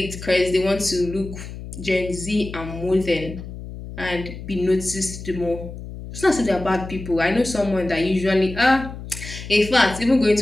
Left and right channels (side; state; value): left; noise; hum, 11 dB below the sound